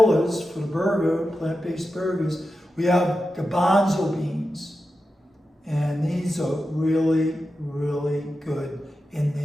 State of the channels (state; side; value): normal; both; correlation 0.91